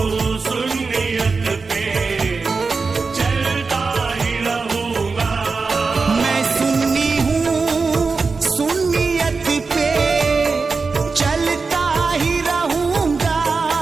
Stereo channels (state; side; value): quieter; left; 4.4 dB